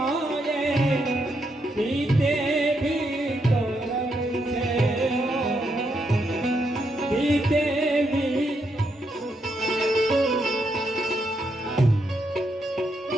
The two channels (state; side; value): normal; both; correlation 0.79